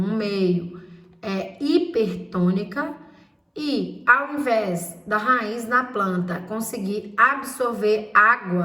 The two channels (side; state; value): both; identical; correlation 1.00